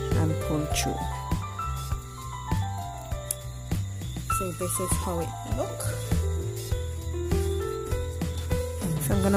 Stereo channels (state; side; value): identical; both; correlation 1.00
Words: and pull through. So this is how it looks. So I'm going to